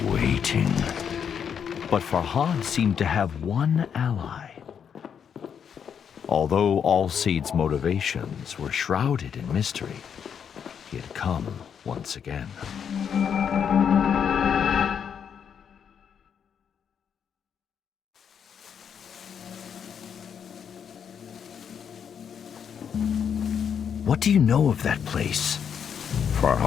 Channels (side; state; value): right; quieter; 7.7 dB